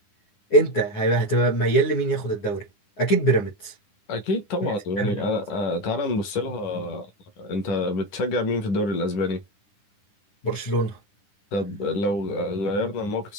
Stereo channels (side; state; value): right; late; 9.9 ms